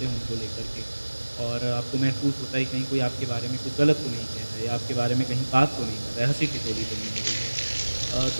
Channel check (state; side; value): inverted; both; correlation -1.00